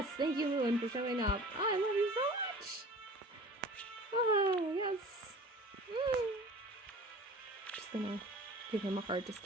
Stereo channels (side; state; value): both; normal; correlation 0.42